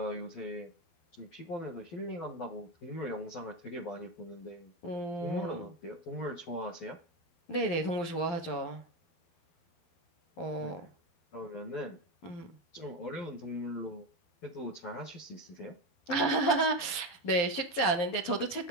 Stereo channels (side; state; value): right; late; 11 ms